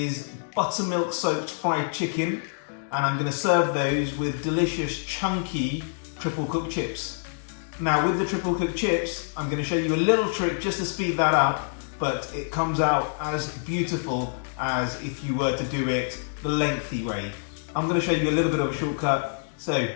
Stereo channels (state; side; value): silent; right; digital silence